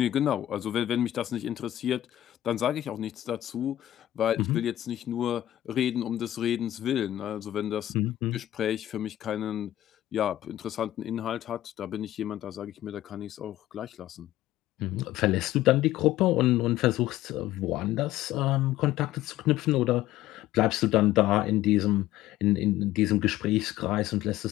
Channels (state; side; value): quieter; right; 13.9 dB